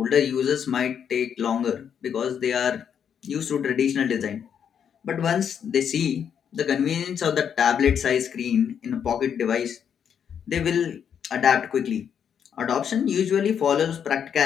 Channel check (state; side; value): quieter; right; 8.0 dB